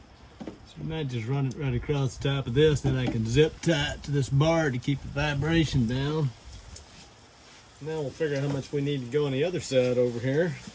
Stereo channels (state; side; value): identical; both; correlation 1.00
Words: you might just run it right across the top of this, then I can zip tie it to this bar to keep the vibration down. Now we'll figure out how much we need to go on the other side over here.